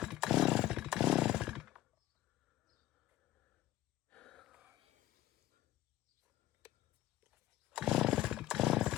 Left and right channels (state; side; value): quieter; right; 14.3 dB